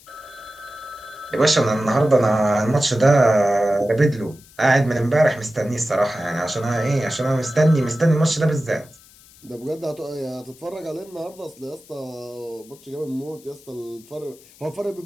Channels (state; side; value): noise; left; hiss, 25 dB below the sound